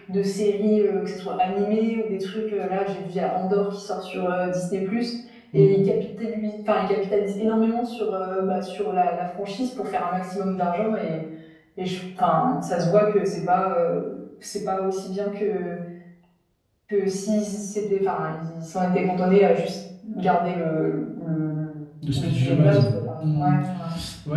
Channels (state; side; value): identical; both; correlation 1.00